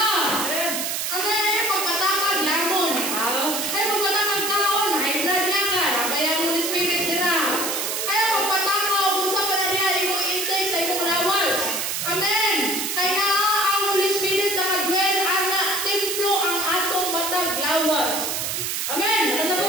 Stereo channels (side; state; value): right; noise; hiss, 1 dB below the sound